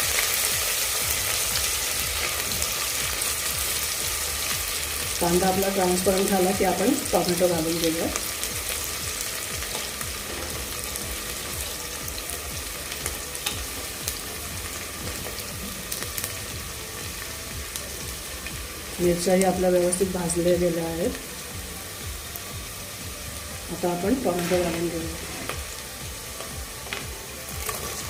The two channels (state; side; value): identical; both; correlation 1.00